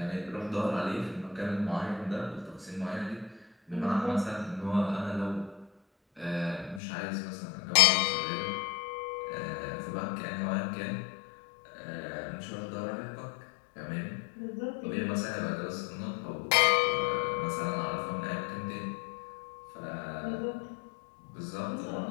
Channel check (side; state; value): right; drops out; at 6.8 s